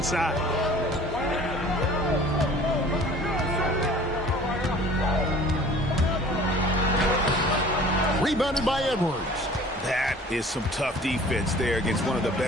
Rebounded by Edwards. That is some tough defense there against one of the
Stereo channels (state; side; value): normal; both; correlation 0.48